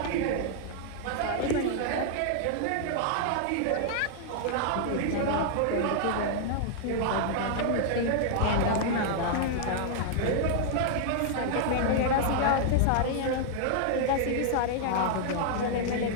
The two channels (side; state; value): both; different; correlation -0.01